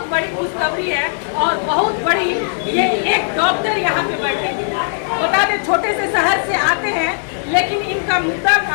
बड़ी खुशखबरी है और बहुत बड़ी ये एक डॉक्टर यहाँ पे बैठेंगे। बता दें छोटे से शहर से आते हैं, लेकिन इनका मुद्दा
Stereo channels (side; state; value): right; silent; digital silence